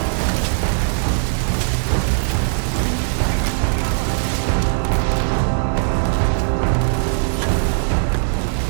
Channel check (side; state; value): left; silent; digital silence